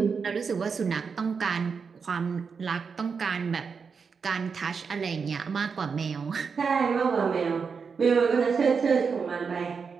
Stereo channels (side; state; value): left; quieter; 5.6 dB